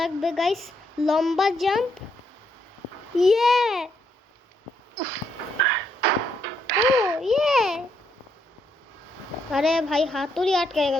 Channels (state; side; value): normal; both; correlation 0.75